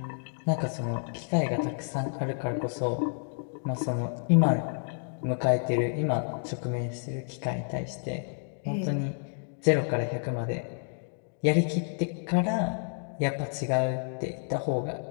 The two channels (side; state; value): right; silent; digital silence